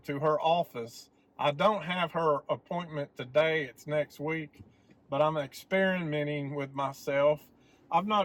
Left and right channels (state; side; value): identical; both; correlation 1.00